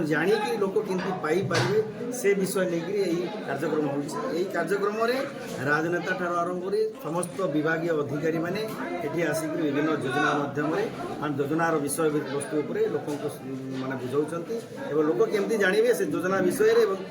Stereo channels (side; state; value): both; identical; correlation 1.00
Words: जाणिकी लोक केमती पाइपारे से विषय लेकिन यही कार्यक्रम होगी कार्यक्रम में राजनेता ठार आरंभ कर समस्त विभाग अधिकारी मैंने ये आसिक विभिन्न योजना मध्यम योजनार विषय वस्तु लोक मैंने बुझाऊँच लोक केमती जानवे से योजना विषय